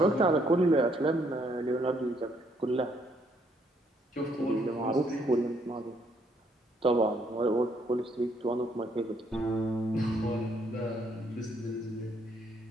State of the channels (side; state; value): both; normal; correlation 0.70